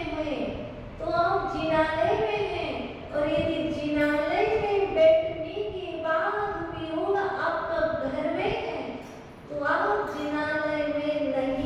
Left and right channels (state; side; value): identical; both; correlation 1.00